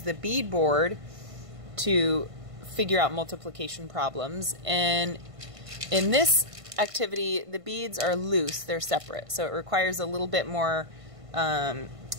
the bead board to figure out multiplication problems. And in this activity, the beads are loose, they're separate, so it requires a little bit more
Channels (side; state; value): left; late; 1.5 ms